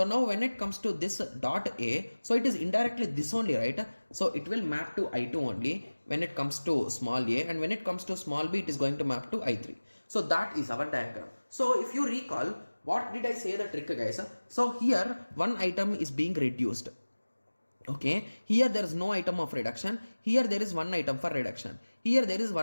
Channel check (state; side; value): inverted; both; correlation -1.00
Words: now when it comes to this dot A, so it is indirectly this only, right? So it will map to I2 only when it comes to small a, and when it comes to small b, it is going to map to I3. So that is our diagram. So if you recall, what did I say the trick, guys? So here one item is being reduced. Okay, here there is no item of reduction. Here there is one item for reduction. Here there is